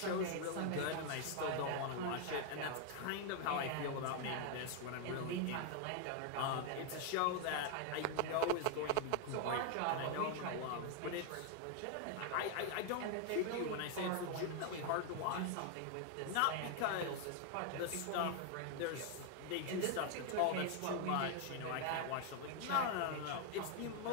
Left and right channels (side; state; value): both; different; correlation 0.00